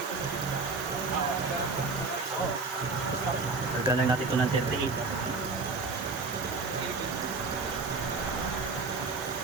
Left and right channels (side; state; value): left; quieter; 4.1 dB